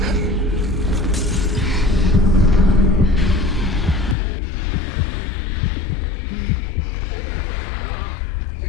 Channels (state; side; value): drops out; right; at 4.2 s